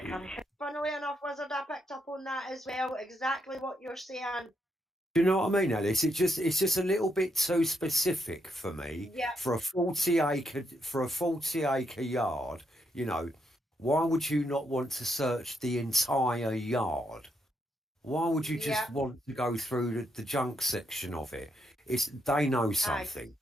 enough, Wizard, I picked up on that as well. Exactly what you're saying. Do you know what I mean, Alice? It's just a little bit too specific for me Yeah, for a 40 acre yard. You know, why would you not want to search the entire yard? Why would you yeah, just want to go through the junk section of it? It's they know aye. something.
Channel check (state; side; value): normal; both; correlation 0.79